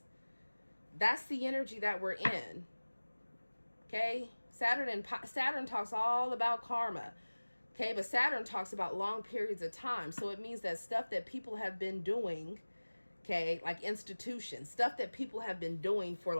That's the energy that we're in. Okay? Saturn talks all about karma. Okay? But Saturn talks about long periods of time. So it means that stuff that people have been doing, okay, like institutions, stuff that people have been doing for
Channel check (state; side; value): inverted; both; correlation -1.00